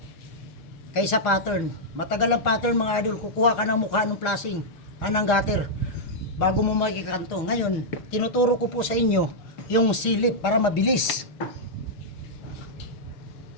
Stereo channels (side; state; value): right; late; 6.3 ms